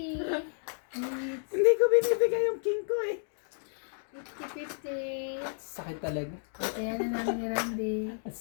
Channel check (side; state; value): right; silent; 57 dB below the other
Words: It's Hindi ko binibigay yung king ko eh. 50, 50. sakit talaga. Kaya na namin ni Randy. Ang